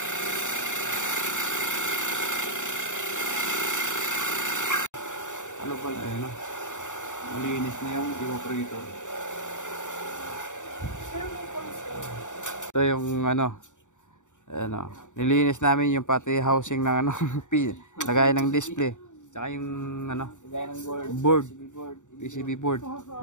Ano pala? Ayun o. Malinis na yung evaporator. Ito yung ano. Ano, nilinis namin yung pati housing ng ano, lagay ng display. Tsaka yung ano, board. PCB board.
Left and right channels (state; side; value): late; right; 0.86 ms